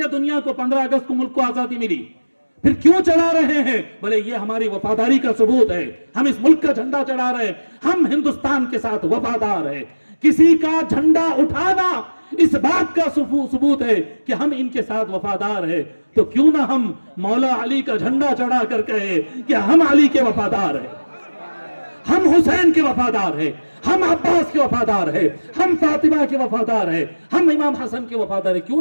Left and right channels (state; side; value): inverted; both; correlation -1.00